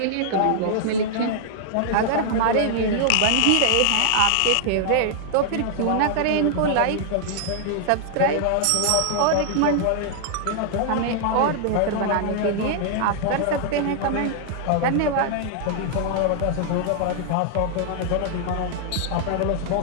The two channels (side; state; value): both; different; correlation -0.01